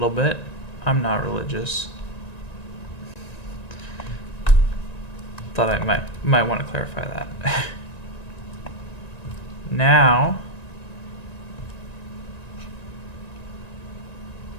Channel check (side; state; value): right; late; 1.9 ms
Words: bit. I'm not religious. Thought I might want to clarify that. Now